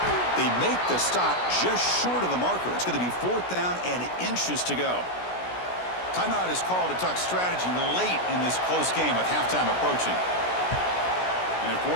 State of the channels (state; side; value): late; right; 16 ms